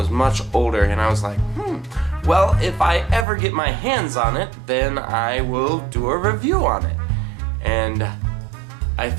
much older. And I was like, well, if I ever get my hands on it, then I will do a review on it. And I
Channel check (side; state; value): left; drops out; at 3.2 s